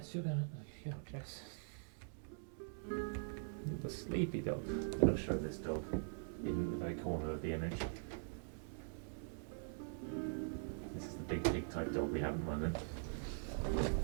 you're gonna... Yeah, Jess. The sleepy dog. I'm going to show this dog in the very corner of the image. This is the big pig type dog we have at the moment.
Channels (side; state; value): left; silent; digital silence